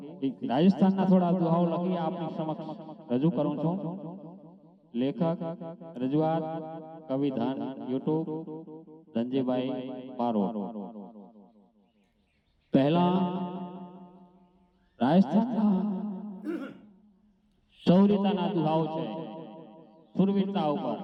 રાજસ્થાનના થોડા દુહાઓ લખી આપની સમક્ષ રજૂ કરું છું। લેખક, રજૂઆત, કવિધાન, યુટ્યુબ ધનજીભાઈ બારોટ। પહેલા રાજસ્થાનના શૌર્યતાના દુહાઓ છે, સુરવીરતા ઉપર।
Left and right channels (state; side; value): identical; both; correlation 1.00